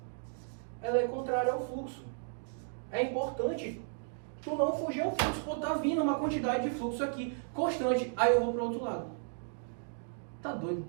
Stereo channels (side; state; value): left; silent; digital silence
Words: Ela é contrária ao fluxo. É importante tu não fugir ao fluxo. Pô, tá vindo uma quantidade de fluxo aqui, constante. Aí eu vou para o outro lado. Tá